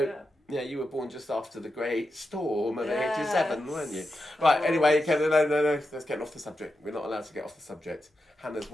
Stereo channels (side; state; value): both; normal; correlation 0.88